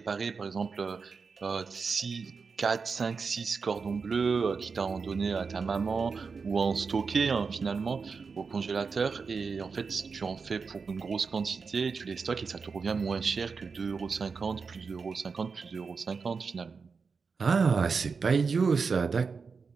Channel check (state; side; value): quieter; left; 5.1 dB